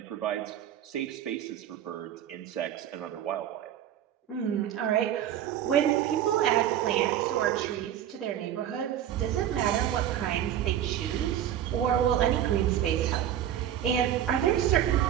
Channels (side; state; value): left; quieter; 10.9 dB